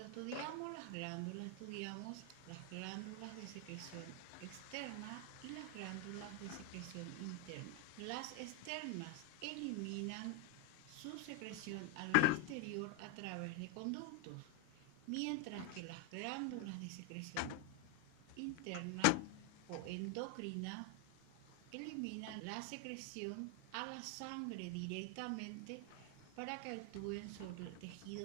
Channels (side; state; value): both; different; correlation 0.01